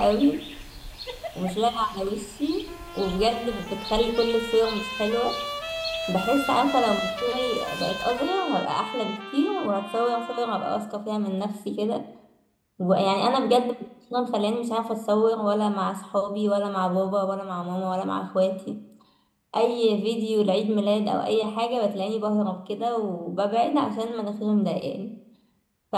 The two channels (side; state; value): both; identical; correlation 1.00